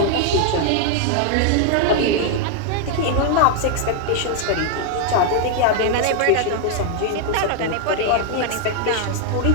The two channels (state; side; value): different; both; correlation 0.00